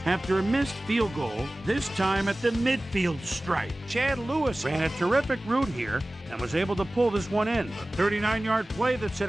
after a missed field goal, this time at the midfield stripe. Chad Lewis ran a terrific route here and was able to pull this one in. A 39-yard play that set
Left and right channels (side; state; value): both; normal; correlation 0.97